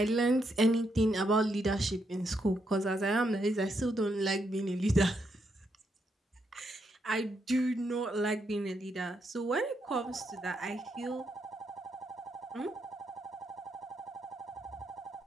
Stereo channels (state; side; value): normal; both; correlation 0.79